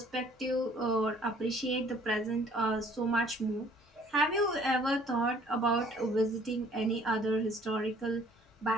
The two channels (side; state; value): both; normal; correlation 0.57